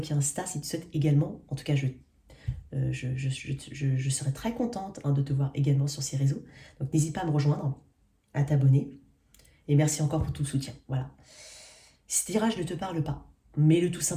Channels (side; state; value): both; identical; correlation 1.00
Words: et Insta si tu souhaites également. En tout cas, je serai très contente de te voir également sur ces réseaux. Donc n'hésite pas à me rejoindre, à t'abonner. Et merci encore pour tout le soutien. Voilà. Ce tirage ne te parle pas. Mets-le tout